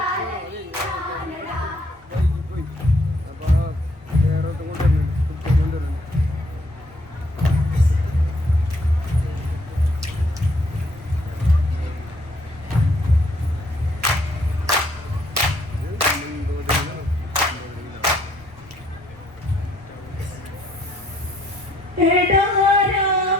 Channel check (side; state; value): both; normal; correlation 0.67